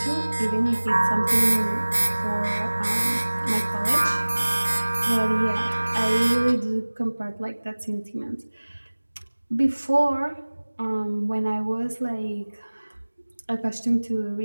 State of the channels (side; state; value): both; inverted; correlation -1.00